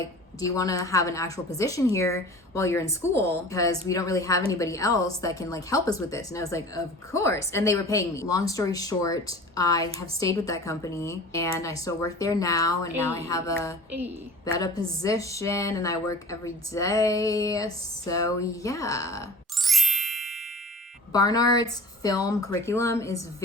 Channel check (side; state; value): both; normal; correlation 0.41